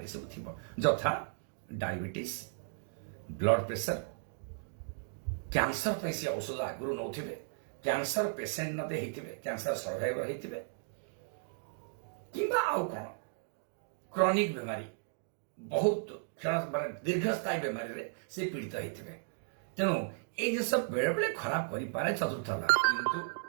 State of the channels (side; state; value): left; silent; digital silence